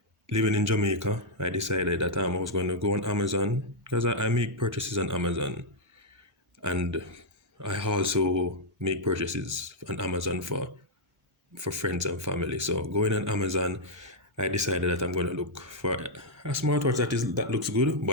living in Jamaica, I decided that I was going to go on Amazon because I make purchases on Amazon, and I also make purchases on Amazon for friends and family. So going on Amazon, I decided that I'm going to look for a smartwatch that looks good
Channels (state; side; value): normal; both; correlation -0.04